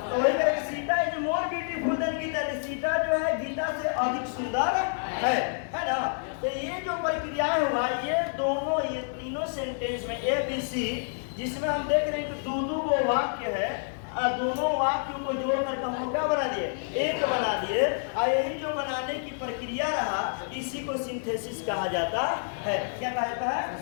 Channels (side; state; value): right; silent; digital silence